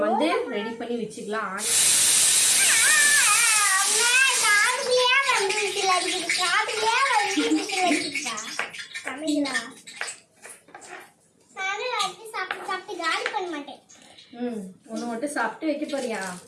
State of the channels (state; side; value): identical; both; correlation 1.00